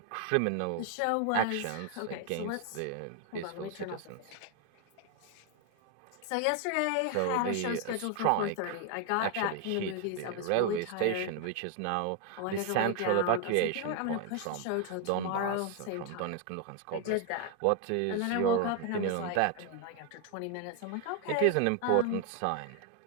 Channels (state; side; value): different; both; correlation 0.00